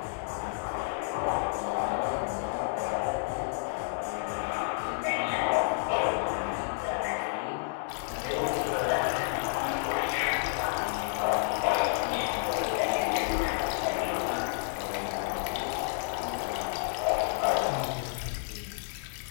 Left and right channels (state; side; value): silent; right; 57 dB below the other